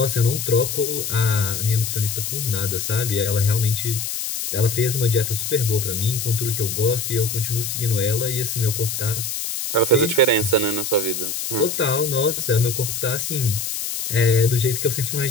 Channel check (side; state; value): left; noise; hiss, 4 dB below the sound